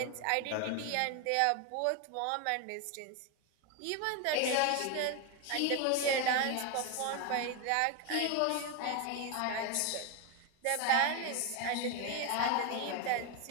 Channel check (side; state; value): both; different; correlation 0.02